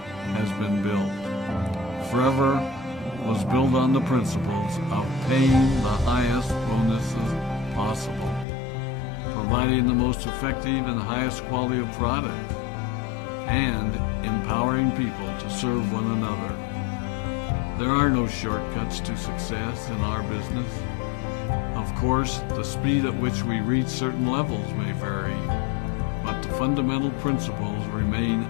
has been built. Forever was built on the principles of paying the highest bonuses possible, providing the most effective and highest quality of product, and empowering people to serve one another. There are no shortcuts to success in our business. Of course, the speed at which we reach certain levels may vary, but the fundamental principles remain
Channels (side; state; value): right; drops out; at 8.5 s